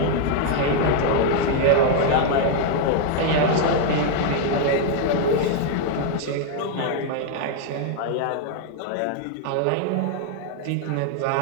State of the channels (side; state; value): both; different; correlation 0.00